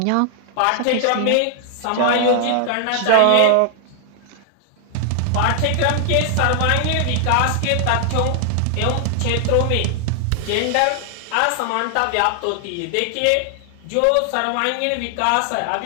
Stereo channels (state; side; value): different; both; correlation 0.00